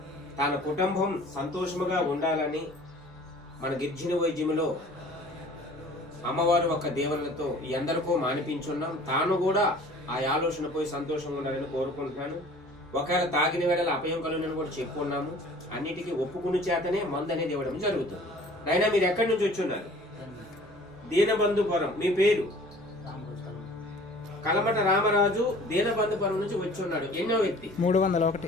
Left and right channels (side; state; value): both; normal; correlation 0.48